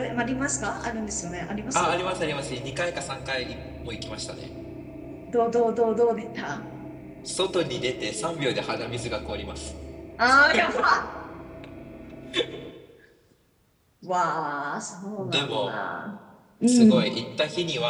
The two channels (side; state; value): both; identical; correlation 1.00